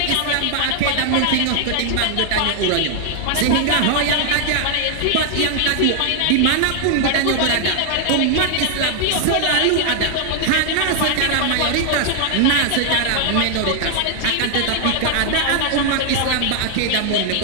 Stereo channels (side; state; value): both; different; correlation 0.00